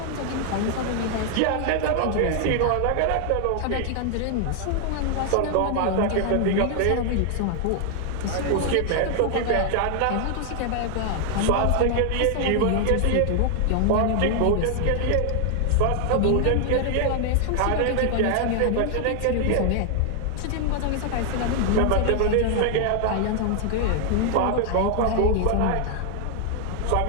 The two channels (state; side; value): different; both; correlation 0.00